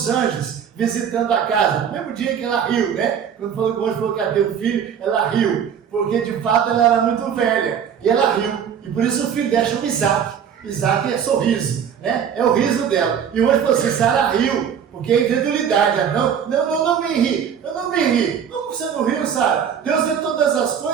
anjos visitando a casa, no mesmo dia que ela riu, né? Quando o anjo falou que ia ter um filho, ela riu. Porque de fato ela era muito velha. E ela riu. E por isso o filho dela chama Isaac. Isaac é sorriso, né? É o riso dela. E o anjo falou assim: Sara riu. Porque é incredulidade. Não me ri. Eu não me ri. Como você não riu, Sara? Deus vê todas as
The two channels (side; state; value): left; quieter; 8.1 dB